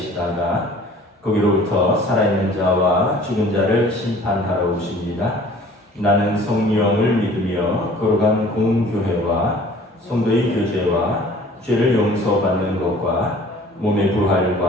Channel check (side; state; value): both; normal; correlation 0.50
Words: 거기로부터 살아있는 자와 죽은 자를 심판하러 오십니다. 나는 성령을 믿으며 거룩한 공교회와 성도의 교제와 죄를 용서받는 것과 몸의